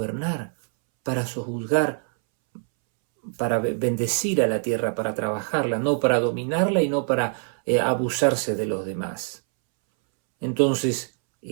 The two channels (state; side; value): silent; left; 62 dB below the other